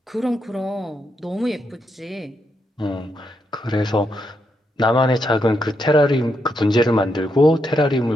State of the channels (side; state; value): both; normal; correlation 0.81